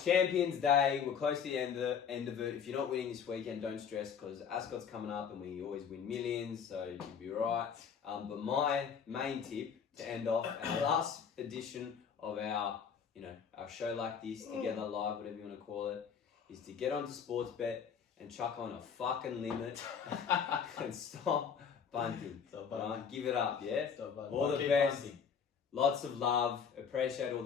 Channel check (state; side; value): quieter; right; 6.9 dB